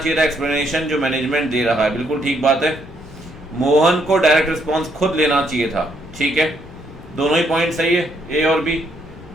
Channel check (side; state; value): left; noise; rumble, 19 dB below the sound